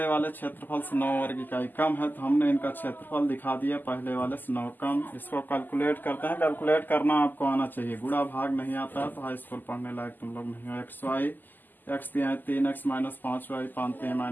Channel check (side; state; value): right; late; 0.087 ms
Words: वाले क्षेत्रफल से 9 वर्ग इकाई कम है, तो हमने इनका क्षेत्रफल दिखा दिया पहले वाले से 9 कम। इसको कैलकुलेट करते हैं। कैलकुलेट करना आपको आना चाहिए, गुणा भाग नहीं आता है तो हाई स्कूल पढ़ने लायक तुम लोग नहीं हो। xy x दिया है 3x -5y, 5